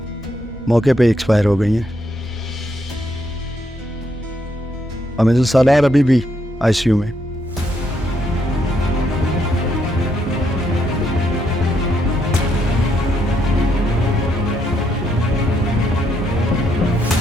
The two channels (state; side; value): normal; both; correlation 0.75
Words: मौके पे एक्सपायर हो गई हैं और मिस्टर सालार अभी भी आईसीयू में।